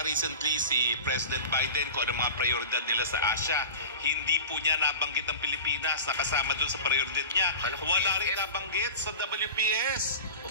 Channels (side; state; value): both; inverted; correlation -0.32